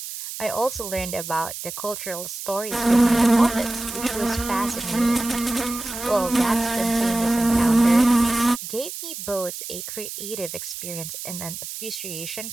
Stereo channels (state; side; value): noise; right; hiss, 9 dB below the sound